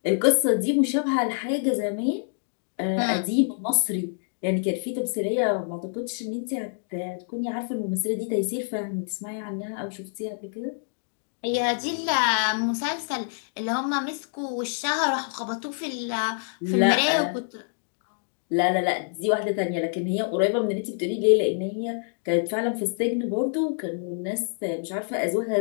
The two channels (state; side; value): silent; right; digital silence